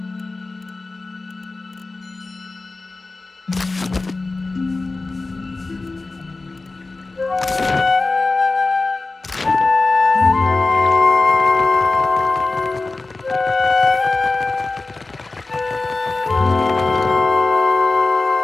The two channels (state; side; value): quieter; right; 3.5 dB